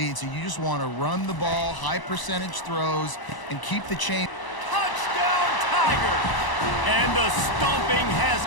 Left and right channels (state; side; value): late; right; 1.0 ms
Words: so you just want to run the ball, high percentage throws, and keep the chain. Touchdown, Tigers! And the stomping has